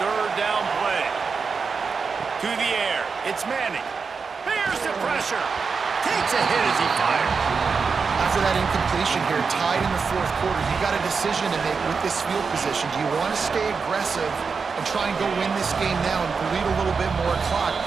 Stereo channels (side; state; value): left; quieter; 5.2 dB